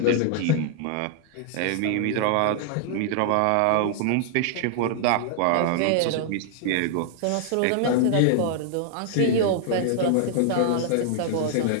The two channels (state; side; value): different; both; correlation -0.01